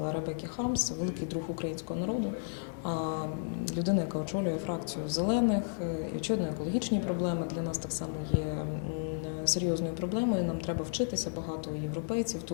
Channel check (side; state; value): right; silent; digital silence